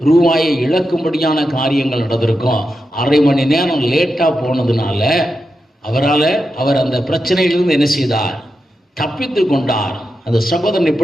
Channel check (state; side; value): normal; both; correlation 0.88